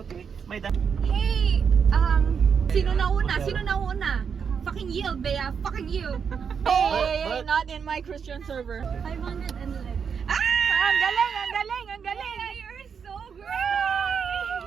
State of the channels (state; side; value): quieter; left; 6.6 dB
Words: May da- Hey, sino nauna? Sino nauna? Fucking you, Bea. Fucking you. But- Not in my Christian server. 511. Ah! Ang galing, ang galing, ang galing. You're so great!